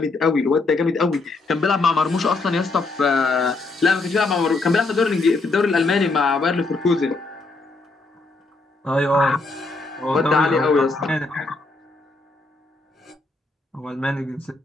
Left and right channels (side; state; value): right; quieter; 3.4 dB